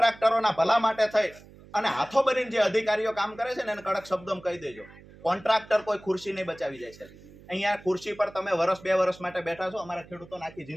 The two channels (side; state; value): right; noise; hum, 21 dB below the sound